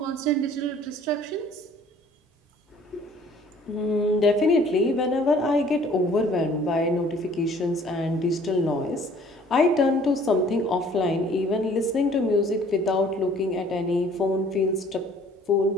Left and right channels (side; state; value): both; normal; correlation 0.55